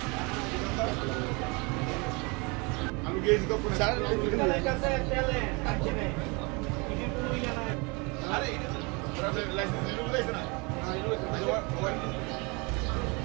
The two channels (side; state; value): left; quieter; 28.8 dB